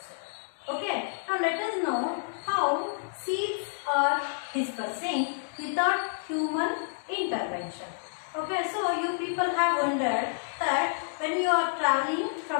Okay, now let us know how seeds are dispersing without human intervention. Okay, so you people have wondered that when you are traveling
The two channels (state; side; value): silent; right; digital silence